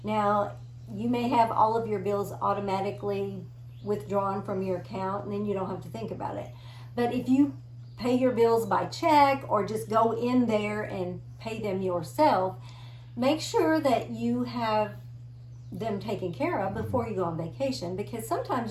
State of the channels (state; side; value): identical; both; correlation 1.00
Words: Now, you may have all of your bills automatically withdrawn from your account, and then you don't have to think about it. But if you pay your bills by check or just go in there and pay them yourself, make sure that you have them taken care of before you go on vacation, because sometimes